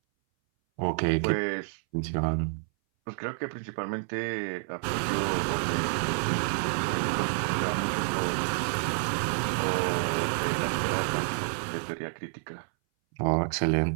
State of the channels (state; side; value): silent; left; 59 dB below the other